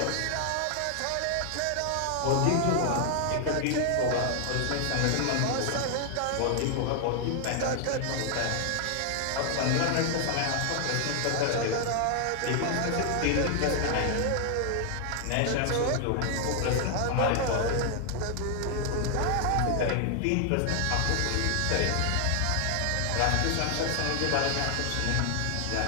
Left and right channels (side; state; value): both; different; correlation 0.00